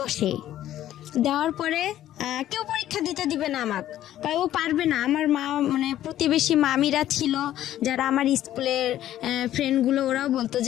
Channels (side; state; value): right; quieter; 12.6 dB